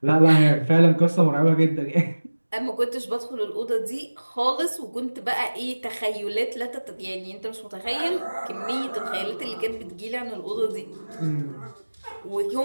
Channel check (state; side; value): inverted; both; correlation -1.00